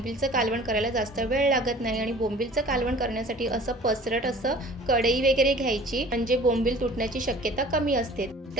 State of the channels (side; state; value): both; normal; correlation 0.47